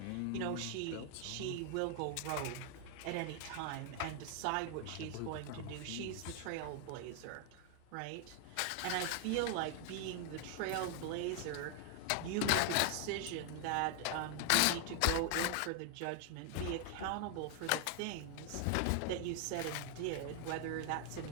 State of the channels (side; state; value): both; different; correlation 0.00